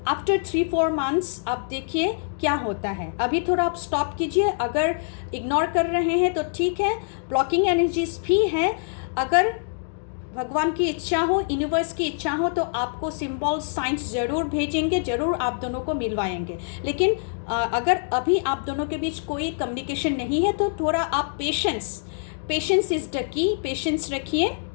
आफ्टर 3-4 मंथ्स आप देखिए क्या होता है। अभी थोड़ा आप स्टॉप कीजिए, अगर इग्नोर कर रहे हैं तो ठीक है, ब्लॉकिंग एनर्जीज भी हैं। अगर भगवान की इच्छा हो, यूनिवर्स की इच्छा हो, तो आपको सिंबल साइंस ज़रूर भेजेंगे, ज़रूर आप दोनों को मिलवाएंगे। लेकिन अगर अभी आप दोनों के बीच कोई कम्युनिकेशन नहीं है तो थोड़ा आप patience is the key, patience रखिए,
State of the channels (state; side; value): silent; right; digital silence